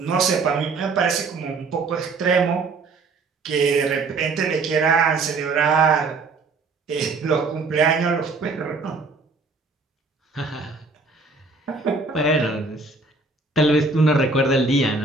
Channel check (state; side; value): quieter; left; 3.9 dB